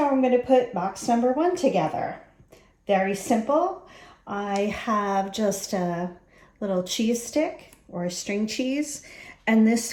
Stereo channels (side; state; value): both; identical; correlation 1.00